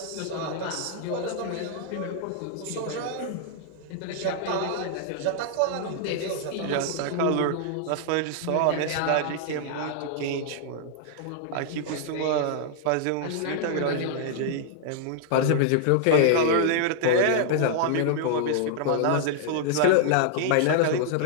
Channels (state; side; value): different; both; correlation -0.01